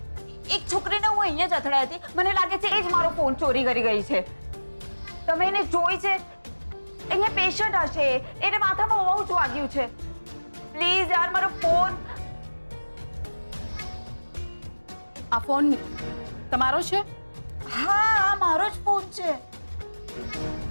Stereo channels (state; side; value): inverted; both; correlation -1.00